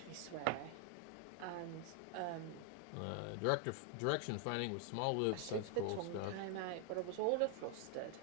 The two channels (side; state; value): both; different; correlation 0.00